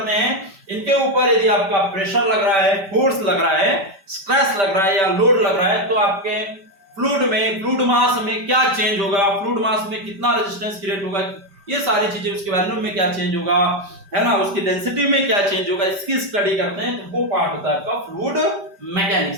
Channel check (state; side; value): late; left; 5.1 ms